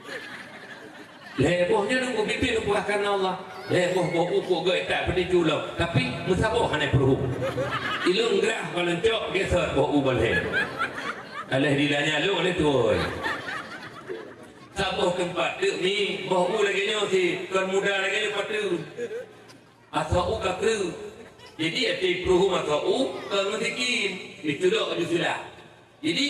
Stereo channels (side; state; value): both; identical; correlation 1.00